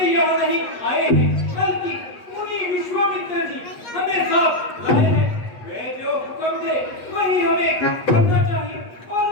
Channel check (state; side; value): late; right; 8.3 ms